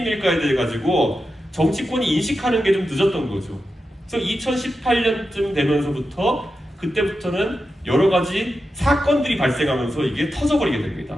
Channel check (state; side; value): normal; both; correlation 0.90